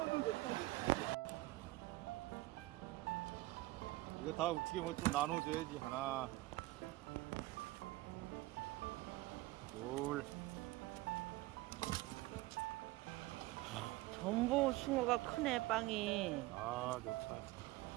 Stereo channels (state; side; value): quieter; left; 19.4 dB